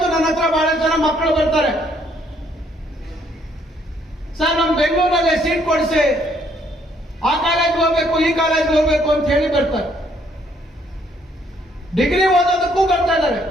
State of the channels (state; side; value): normal; both; correlation 0.68